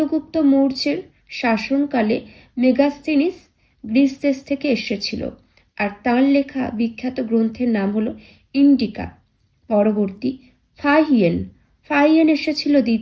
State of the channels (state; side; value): identical; both; correlation 1.00